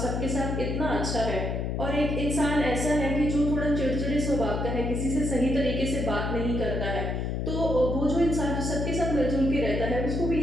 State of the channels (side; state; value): left; noise; hum, 1 dB below the sound